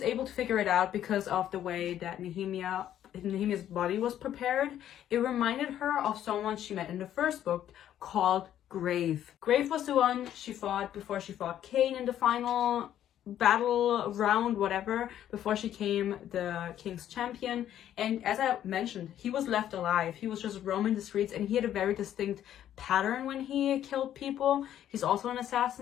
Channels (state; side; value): quieter; right; 11.1 dB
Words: able to figure it out because of the way that Nehemia's body was prepared. It reminded her of someone she met in the first book called Grave. Grave was the one she fought before she fought Cain in the final battle round, whatever, before she became the king's champion. And as I mentioned, he was left alive. He was just roaming the streets, and he had a very distinct pattern when he killed people. He's also an